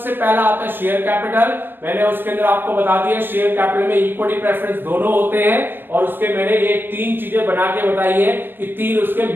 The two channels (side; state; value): left; late; 0.096 ms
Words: पहला आता है शेयर कैपिटल। मैंने उसके अंदर आपको बता दिया शेयर कैपिटल में इक्विटी प्रेफरेंस दोनों होते हैं और उसके मैंने ये 3 चीजें बना के बताई है कि 3 उसके